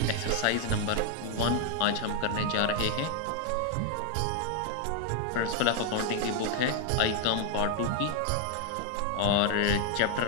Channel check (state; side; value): different; both; correlation 0.01